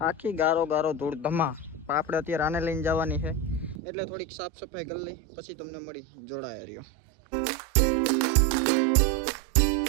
આખી ગારો ધૂળ ધમા. પણ આપણે અત્યારે આને લઈને જવાની છે એટલે થોડીક સાફ સફાઈ કરી લઈ પછી તમને મળી. જોડાય રહ્યો.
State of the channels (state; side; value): drops out; left; at 3.8 s